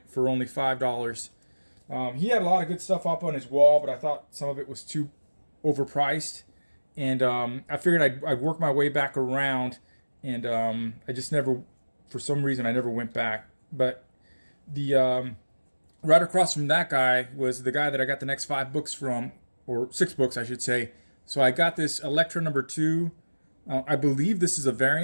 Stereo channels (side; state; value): both; inverted; correlation -1.00